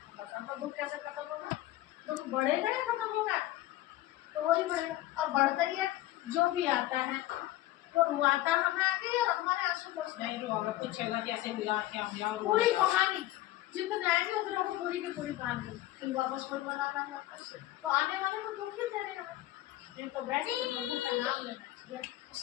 बता तो दुख कैसे खत्म होगा? दुख बढ़ेगा या खत्म होगा? तो वही बढ़ेगा, और बढ़ता ही है। जो भी आता है वो रुआता हमें आगे और हमारे आंसू पोंछते हैं। नहीं तो हमें पूछेगा कैसे हुआ क्या हुआ और पूरी कहानी जितने आएंगे उतने को पूरी की पूरी कहानी फिर वापस वही बनाना है वापस। तो आने वाले को दुख ही दे रहे हैं, नहीं तो बैठ के प्रभु का नाम लेना चाहिए।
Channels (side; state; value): right; quieter; 15.6 dB